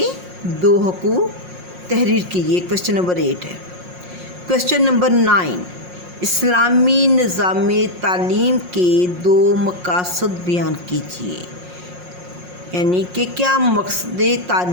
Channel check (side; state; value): left; late; 5.6 ms